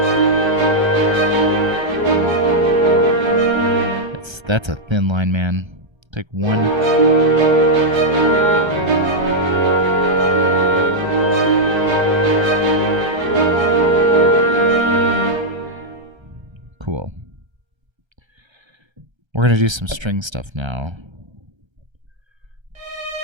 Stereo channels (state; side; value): late; left; 1.3 ms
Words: That's a thin line, man. Take one. Cool. We're gonna do some string stuff now.